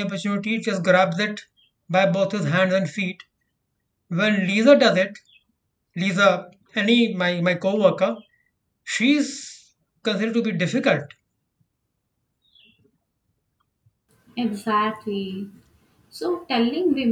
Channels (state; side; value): identical; both; correlation 1.00